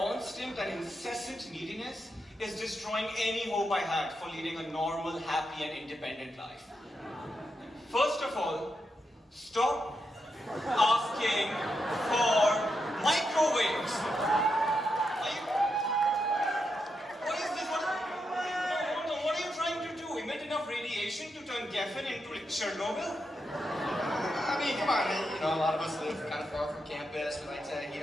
and incessant neediness is destroying any hope I had for leading a normal, happy, and independent life. First of all, stop asking for microwaves. What is this? What are you trying to do? Emit enough radiation to turn Geffen into Chernobyl? I mean, come on, you know, a lot of us live kind of far from campus. We like to heat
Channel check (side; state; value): both; normal; correlation 0.84